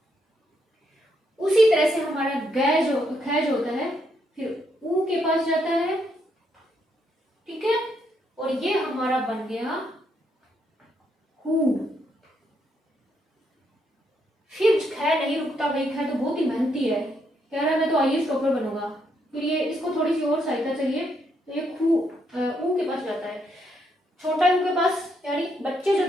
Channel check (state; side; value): normal; both; correlation 0.76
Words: उसी तरह से हमारा ग जो ख जो होता है फिर ऊ के पास जाता है, ठीक है, और ये हमारा बन गया हु। फिर ख नहीं रुकता भाई, ख तो बहुत ही मेहनती है, कह रहा है मैं तो आईएएस टॉपर बनूंगा। फिर ये इसको थोड़ी सी और सहायता चाहिए, तो ये खू ऊ के पास जाता है, छोटा ऊ के पास, यानी बच्चे जो